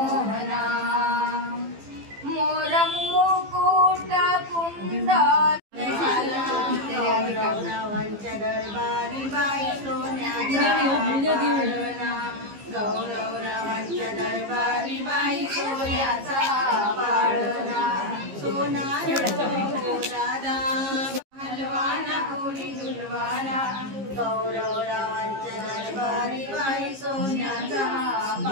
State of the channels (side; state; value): left; late; 15 ms